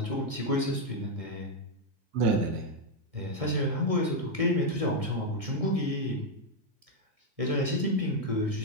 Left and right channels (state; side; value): late; left; 1.6 ms